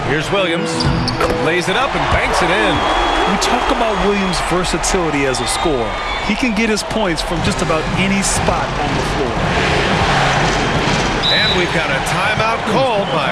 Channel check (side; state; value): both; identical; correlation 1.00